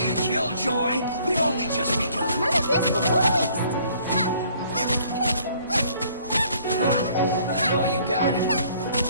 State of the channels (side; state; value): both; inverted; correlation -0.60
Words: killjoy. We've only just begun. None of this will go to waste. I know you got it.